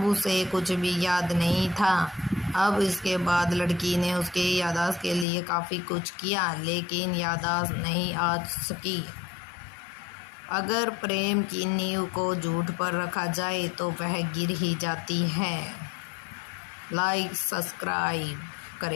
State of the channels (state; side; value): drops out; right; at 5.2 s